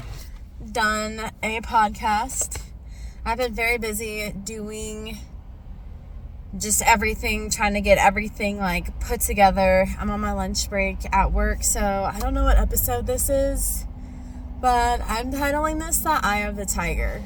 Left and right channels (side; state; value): both; identical; correlation 1.00